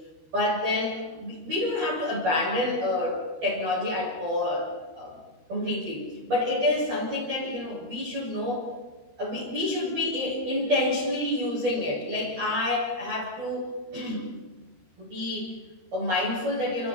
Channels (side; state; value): left; late; 13 ms